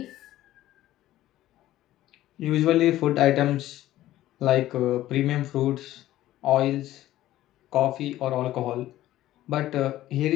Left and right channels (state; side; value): quieter; right; 14.5 dB